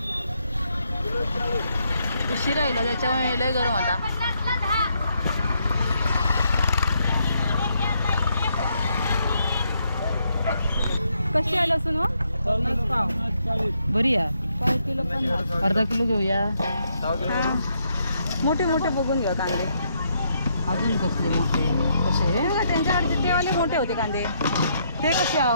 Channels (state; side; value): inverted; both; correlation -0.75